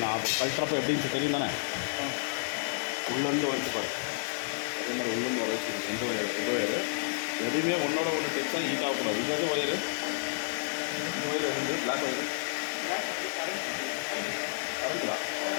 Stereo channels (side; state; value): right; silent; digital silence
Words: நான் கழட்டுறப்ப எப்படின்னு தெரியும் தானே. உள்ளேருந்து வச்சு பாரு, அதே மாதிரி உள்ளேருந்து வர வச்சு எந்த ஒயர் எதுவுமே ஒன்றோட ஒன்று டெக்ஸாக ஹீட் ஆகக்கூடாது. இது எது ஒயரு, இந்த ஒயர் வந்து black wire